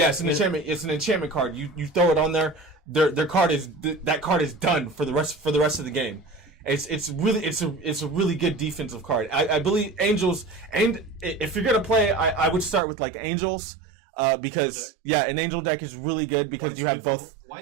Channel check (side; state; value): left; drops out; at 12.8 s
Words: it's an enchantment. It's an enchantment card. You throw it on there. Their card is that card is done for the rest of the game. It's a really good defensive card. I believe Angels, and if you're gonna play, I would start with like Angels. Because an angel deck is really good because you have both.